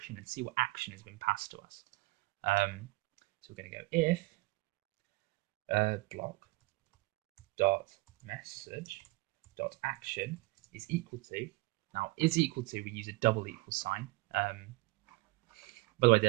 and see what action has been passed to us. So we're going to go if block dot message dot action is equal to, now is equal to, we use a double equal sign. By the way,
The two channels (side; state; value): left; quieter; 22.3 dB